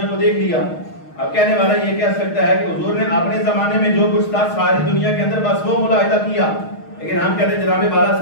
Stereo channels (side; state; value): right; late; 6.4 ms